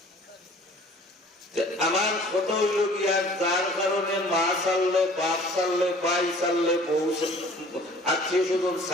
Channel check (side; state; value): both; normal; correlation 0.50